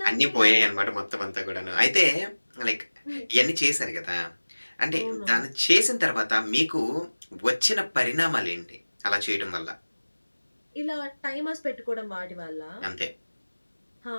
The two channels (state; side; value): inverted; both; correlation -1.00